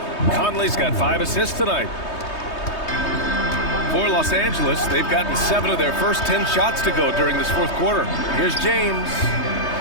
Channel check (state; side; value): late; right; 3.2 ms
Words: Conley's got 5 assists tonight. For Los Angeles, they've gotten 7 of their first 10 shots to go during this 4th quarter. Here's James.